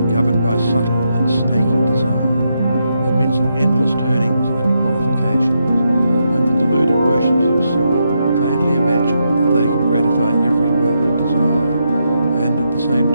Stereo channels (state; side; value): inverted; both; correlation -0.82